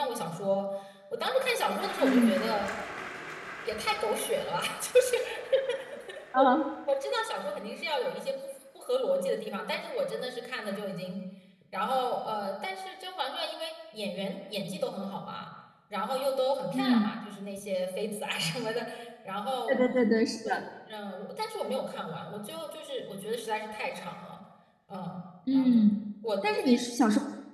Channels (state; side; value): identical; both; correlation 1.00